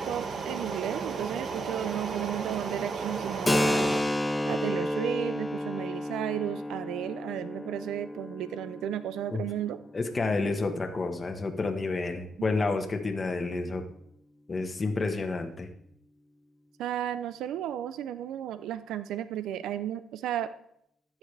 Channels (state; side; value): normal; both; correlation 0.76